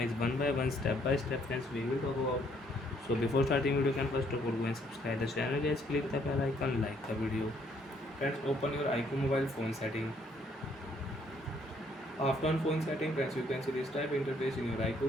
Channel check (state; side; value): normal; both; correlation 0.67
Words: one by one, step by step friends we will talk about. So before starting video, can first of all go and subscribe the channel guys, click the bell icon, like the video. Friends, open your iQoo mobile phone setting. After on phone setting friends, you can see this type interface in your